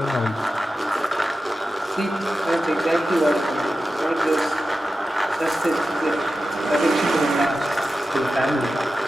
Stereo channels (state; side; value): normal; both; correlation 0.93